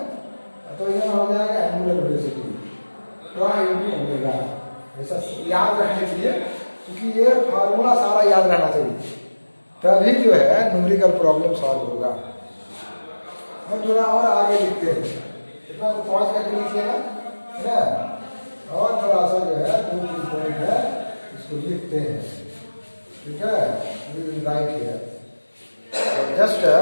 तो यहाँ हो जाएगा angular velocity, torque into omega. ऐसा याद रखने के लिए, क्योंकि ये फार्मूला सारा याद रहना चाहिए, तभी जो है न्यूमेरिकल प्रॉब्लम सॉल्व होगा। हम थोड़ा और आगे लिखते हैं, इतना पॉज करके लिखिएगा, है ना, और थोड़ा सा जो है 2-3 पॉइंट है इसको लिखते हैं, ठीक है। राइट है, जस्ट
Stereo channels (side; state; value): both; inverted; correlation -1.00